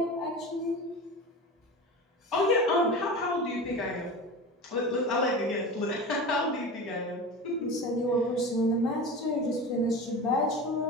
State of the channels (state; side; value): normal; both; correlation 0.30